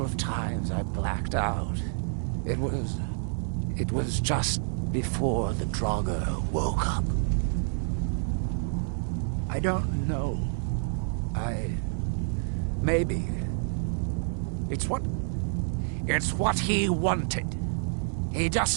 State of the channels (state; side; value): silent; left; digital silence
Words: of times I blacked out. It was just before the Draugr woke up. I don't know. Maybe. It's what he wanted. He